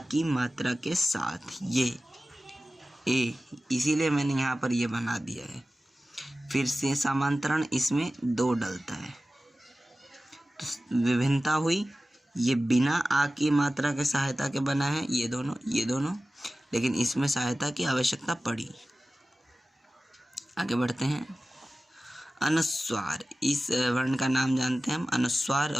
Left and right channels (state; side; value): normal; both; correlation 0.96